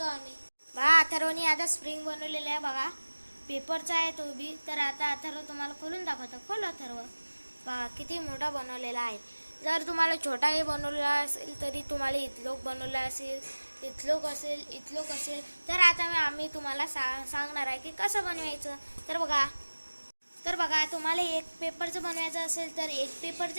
आम्ही। बघा, अथर्वने आता स्प्रिंग बनवलेली आहे। बघा, पेपरचा आहे तो बी। तर आता अथर्व तुम्हाला खोलून दाखवतो। खोल अथर्व। बघा किती मोठा बनवलेला आहे। जर तुम्हाला छोटाही बनवलेला असेल तरी तुम्हाला इथलोक बनवला असेल, इथलोक असेल तर आता आम्ही तुम्हाला सांगणार आहे की कसं बनवायचं। तर बघा तुम्हाला एक पेपरचं बनवायचं असेल तर एक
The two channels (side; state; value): both; inverted; correlation -1.00